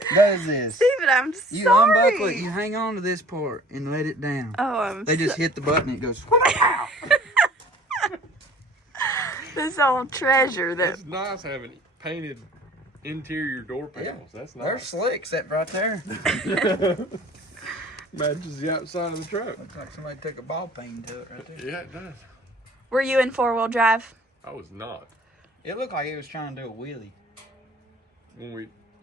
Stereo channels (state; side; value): normal; both; correlation 0.50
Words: does this. Steven, I'm You sorry. unbuckle it, you hang on to this part and let it down. Oh, I'm They just so- hit the button and it goes, this old treasure that It's nice having painted interior door panels. That's they're nice. slick, except right there. Matches the outside of the truck. Looks like somebody took a ball peen to it right there. Yeah, it does. were you in 4-wheel drive? I was not. It looked like he was trying to do a wheelie. When we